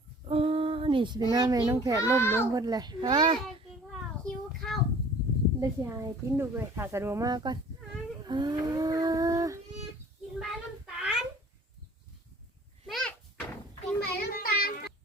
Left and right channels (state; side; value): normal; both; correlation 0.48